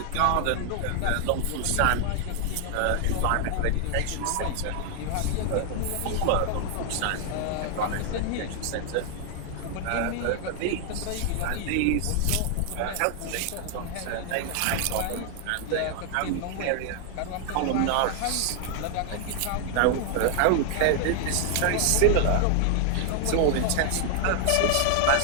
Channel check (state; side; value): different; both; correlation 0.00